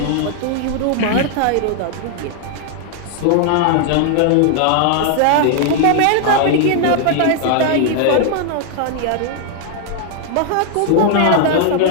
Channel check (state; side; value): different; both; correlation 0.00